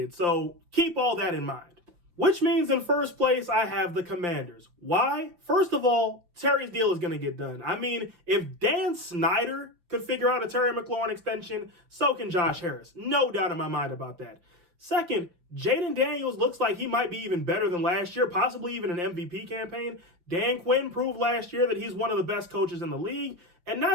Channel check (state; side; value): late; left; 6.0 ms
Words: So keep all that in mind. Which means in first place, I have the Commanders. Why? First of all, Terry's deal is going to get done. I mean, if Dan Snyder could figure out a Terry McLaurin extension, so can Josh Harris. No doubt in my mind about that. Second, Jaden Daniels looks like he might be even better than last year, possibly even an MVP campaign. Dan Quinn proved last year that he's one of the best coaches in the league. And